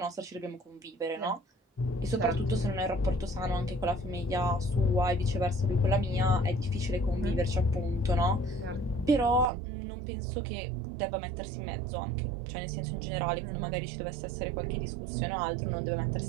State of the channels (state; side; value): drops out; left; at 9.5 s